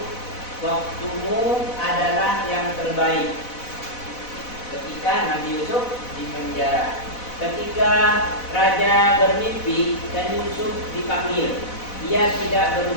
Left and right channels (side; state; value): right; late; 4.0 ms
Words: waktumu adalah yang terbaik. Ketika Nabi Yusuf di penjara, ketika raja bermimpi dan Yusuf dipanggil, ia tidak